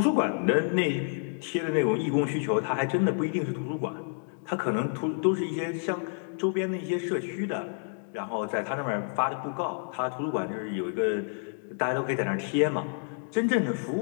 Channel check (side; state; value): right; silent; 59 dB below the other